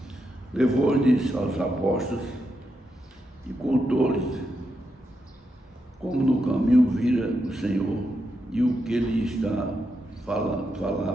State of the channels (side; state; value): both; normal; correlation 0.84